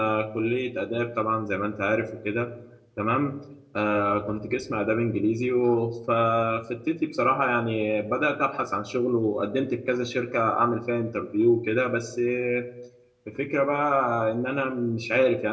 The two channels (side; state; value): both; identical; correlation 1.00